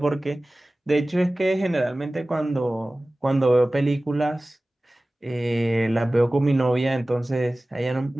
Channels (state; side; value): normal; both; correlation 0.97